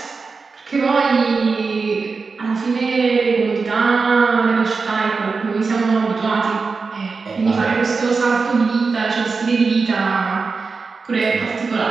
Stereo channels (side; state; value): left; quieter; 4.6 dB